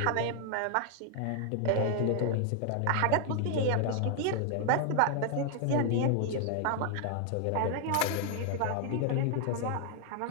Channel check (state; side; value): different; both; correlation 0.00